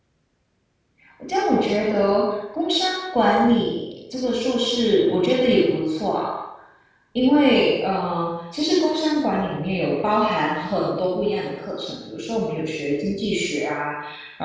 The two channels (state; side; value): identical; both; correlation 1.00